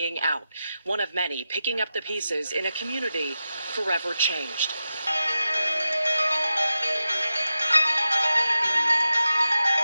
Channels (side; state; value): both; inverted; correlation -0.91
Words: out. One of many picking up the pieces in a community forever changed.